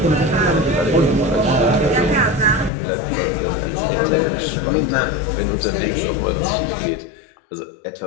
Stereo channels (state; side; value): drops out; right; at 2.7 s